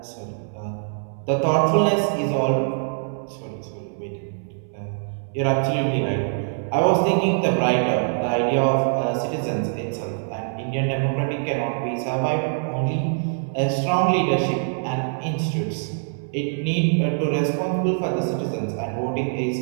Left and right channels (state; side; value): silent; left; 62 dB below the other